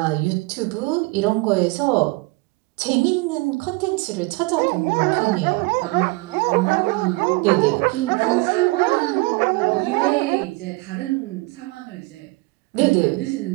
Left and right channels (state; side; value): quieter; left; 24.9 dB